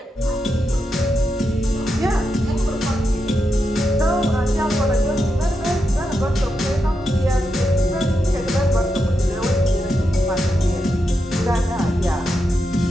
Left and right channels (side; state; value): both; normal; correlation 0.85